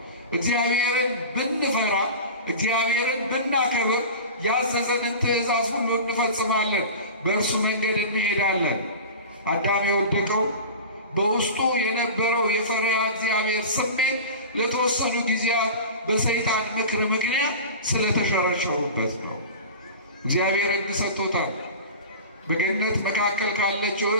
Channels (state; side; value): inverted; both; correlation -0.33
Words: እግዚአብሔርን ብንፈራ እግዚአብሔርን ብናከብር ያዘዘንን ትእዛዝ ሁሉ እንፈጽማለን፣ በእርሱ መንገድ እንሄዳለን። አዳም የወደቀው በውስጡ የነበረው የፈሪሃ እግዚአብሔር ስሜት ለተወሰኑ ጊዜያት በሰይጣን ምክር ምክንያት ስለተሸረሸሩበት ነው። እግዚአብሔር ሕግ ሰጥቶታል። በገነት መካከል ካለችው